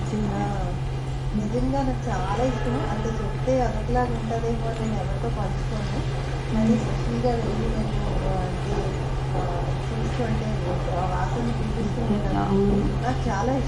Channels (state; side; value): identical; both; correlation 1.00